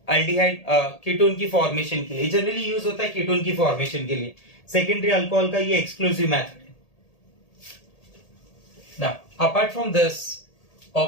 अल्डिहाइड कीटोन की फॉर्मेशन के लिए, जनरली यूज होता है कीटोन की फॉर्मेशन के लिए। सेकेंडरी अल्कोहल का ये एक्सक्लूसिव मेथड है। Now apart from this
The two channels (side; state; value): right; late; 1.8 ms